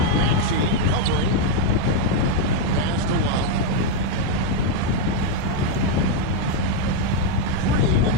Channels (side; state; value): both; different; correlation 0.01